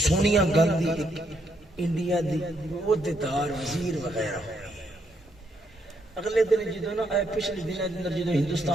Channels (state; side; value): normal; both; correlation 0.75